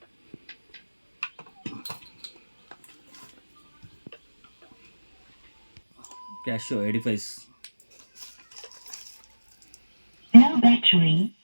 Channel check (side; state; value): both; inverted; correlation -1.00